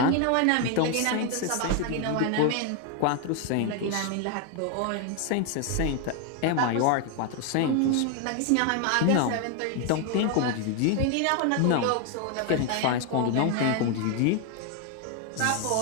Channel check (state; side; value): different; both; correlation 0.01